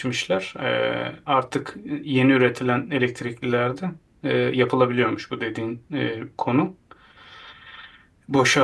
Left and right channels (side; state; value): both; identical; correlation 1.00